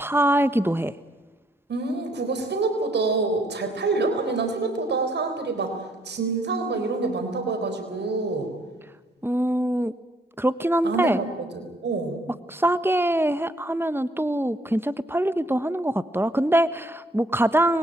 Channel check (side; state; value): both; normal; correlation 0.67